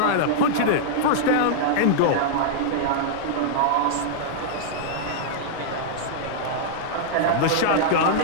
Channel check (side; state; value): both; different; correlation -0.01